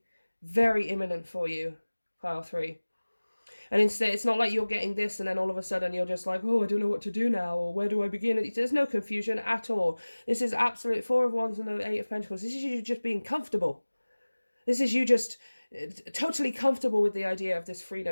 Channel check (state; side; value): inverted; both; correlation -1.00